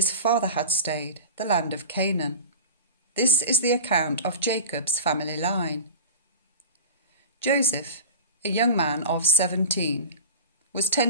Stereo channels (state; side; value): inverted; both; correlation -0.33